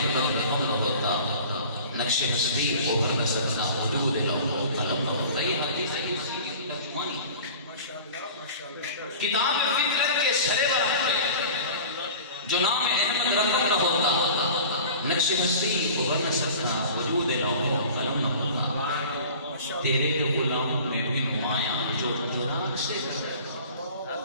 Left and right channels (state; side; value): inverted; both; correlation -0.41